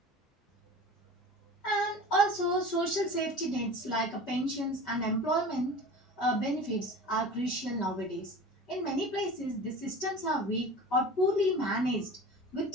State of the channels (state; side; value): normal; both; correlation 0.36